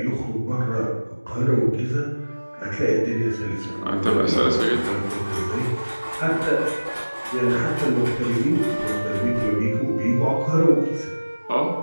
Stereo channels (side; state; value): both; inverted; correlation -1.00